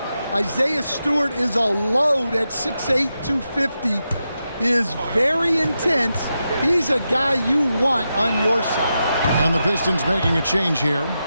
Isaiah Stewart is a load at 6'8", 250. He is very intense. He's a guy you want on your side. And the Pistons making a change here.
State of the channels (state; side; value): inverted; both; correlation -0.88